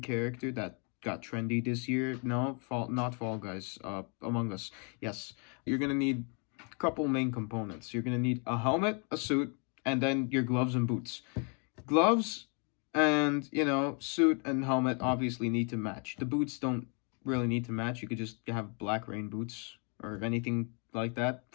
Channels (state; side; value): quieter; right; 36.9 dB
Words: character that got trendy this year. No, not Fall Guys, Among Us. Yes, you're gonna need a couple main components. You're gonna need a helmet, a suit, and then your gloves and boots. Gloves and, suit and helmet obviously need to match. The boots don't really need to match. You could just have black rain boots or anything like that